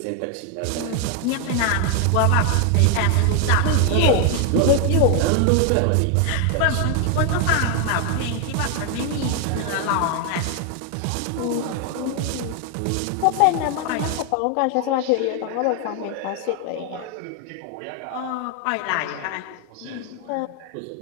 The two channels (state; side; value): different; both; correlation 0.00